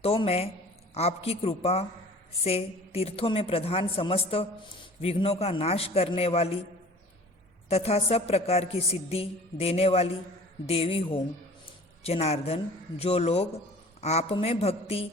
तो मैं आपकी कृपा से तीर्थों में प्रधान समस्त विघ्नों का नाश करने वाली तथा सब प्रकार की सिद्धि देने वाली देवी हूँ। जनार्दन, जो लोग आप में भक्ति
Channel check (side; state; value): both; normal; correlation 0.46